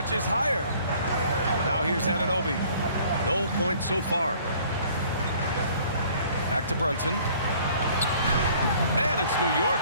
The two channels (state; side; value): inverted; both; correlation -0.55